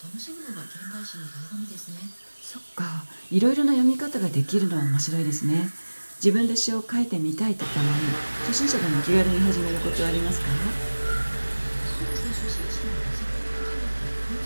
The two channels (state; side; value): inverted; both; correlation -1.00